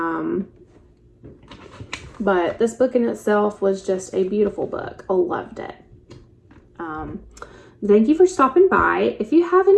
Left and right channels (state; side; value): identical; both; correlation 1.00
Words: But this book in itself was just a beautiful book. I loved it. Thank you for stopping by. If you have